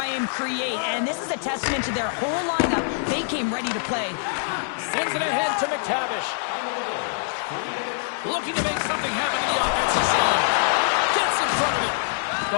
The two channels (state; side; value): silent; right; digital silence